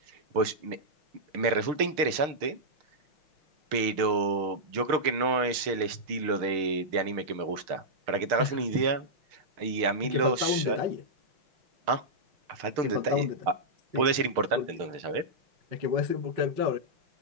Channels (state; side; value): late; left; 6.5 ms